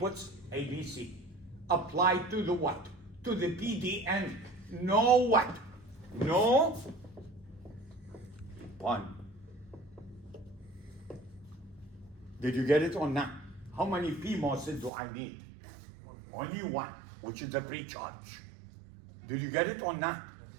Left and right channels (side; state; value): left; drops out; at 14.9 s